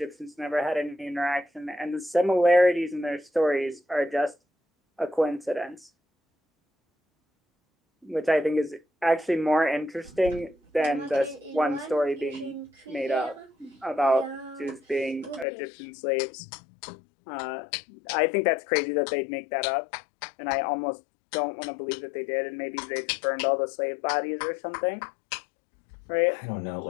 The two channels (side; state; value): right; drops out; at 15.5 s